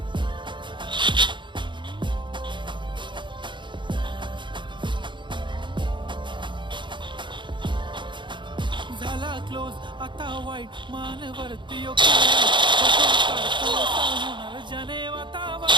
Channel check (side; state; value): left; late; 0.23 ms